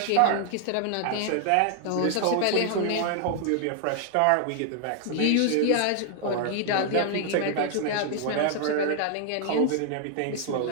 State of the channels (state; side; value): different; both; correlation 0.00